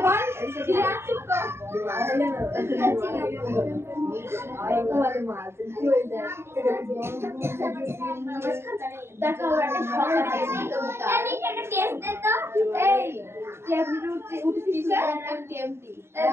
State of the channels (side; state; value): left; late; 0.12 ms